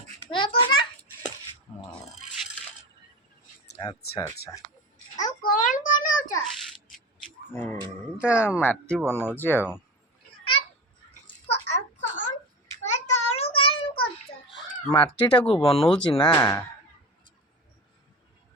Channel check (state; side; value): normal; both; correlation 0.28